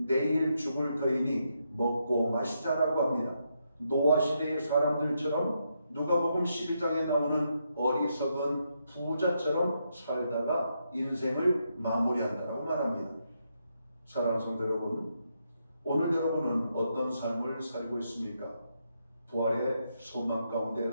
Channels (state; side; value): inverted; both; correlation -0.80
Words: 죽을 터이니 먹고 마시자라고 합니다. 노아 시대의 사람들처럼 누가복음 12장에 나오는 어리석은 부자처럼 살다가 인생을 마무리한다라고 말합니다. 사랑하는 성도 여러분, 오늘 여러분은 어떤 삶을 살고 있습니까? 부활의 소망 가운데